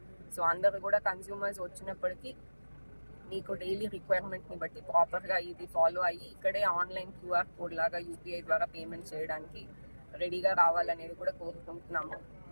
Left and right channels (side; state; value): both; inverted; correlation -1.00